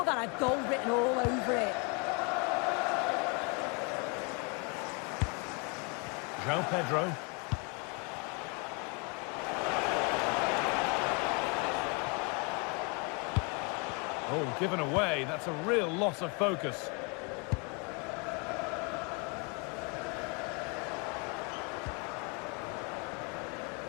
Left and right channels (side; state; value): right; quieter; 33.4 dB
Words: that had goal written all over it. João Pedro. Oh, given away. That's a real loss of focus.